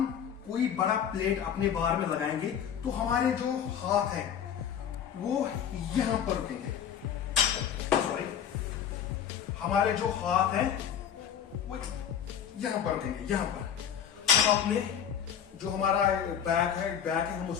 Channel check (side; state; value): right; quieter; 8.7 dB